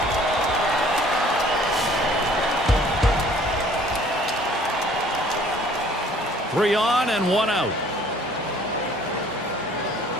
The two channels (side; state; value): both; normal; correlation 0.55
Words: Three on and one out.